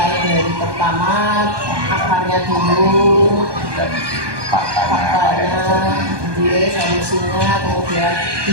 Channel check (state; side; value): late; left; 1.2 ms